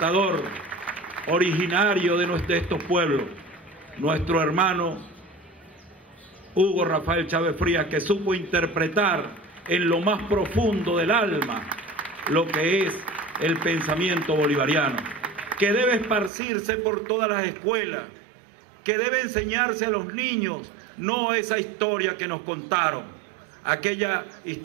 originario de estos pueblos, nuestro hermano Hugo Rafael Chávez Frías, que supo interpretar en lo más profundo del alma lo que es el pensamiento bolivariano, que debe esparcirse por todas las escuelas, que debe enseñarse a los niños, no esa historia que nos contaron, aquella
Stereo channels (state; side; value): drops out; left; at 16.3 s